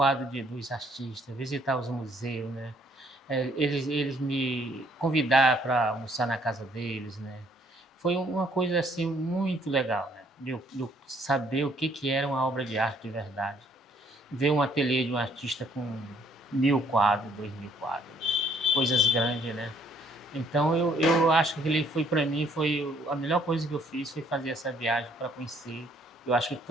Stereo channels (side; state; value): both; normal; correlation 0.64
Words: dos artistas, visitar os museus, né? Eles me convidaram para almoçar na casa deles, né? Foi uma coisa assim muito legal, né? De eu saber o que era uma obra de arte de verdade. Ver um ateliê de um artista com 1.000 quadros, 2.000 quadros, né? Coisas grandes, né? Então eu acho que ele foi para mim foi a melhor coisa que eu fiz foi fazer essa viagem para conhecer. Eu acho que